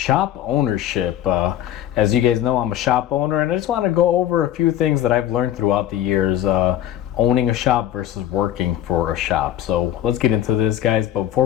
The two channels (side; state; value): right; quieter; 11.9 dB